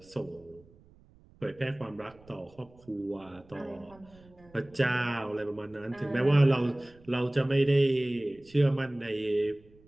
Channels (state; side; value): noise; right; rumble, 27 dB below the sound